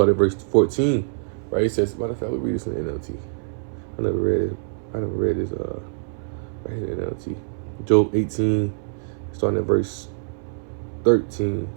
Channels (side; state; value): left; silent; 59 dB below the other